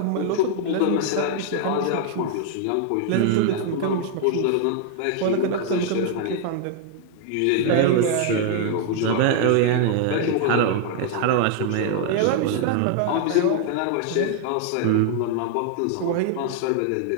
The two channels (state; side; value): different; both; correlation 0.00